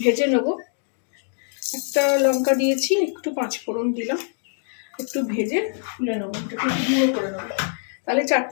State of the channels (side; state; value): right; silent; digital silence